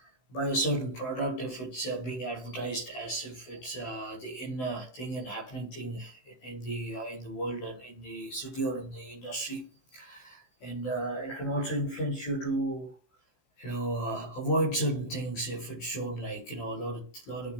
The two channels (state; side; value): late; right; 16 ms